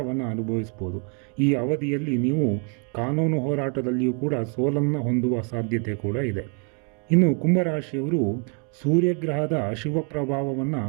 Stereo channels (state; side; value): quieter; left; 37.4 dB